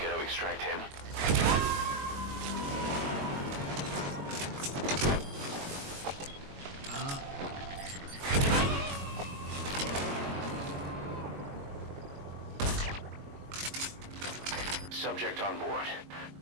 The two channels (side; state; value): left; late; 22 ms